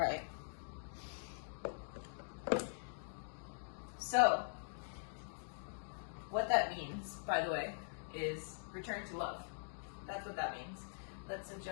So, what that means, by the way, is return to love. That's what that means. Let's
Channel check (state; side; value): silent; right; digital silence